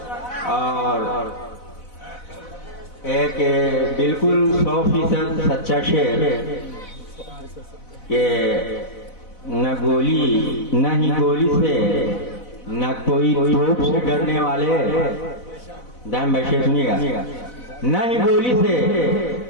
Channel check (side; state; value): right; late; 4.0 ms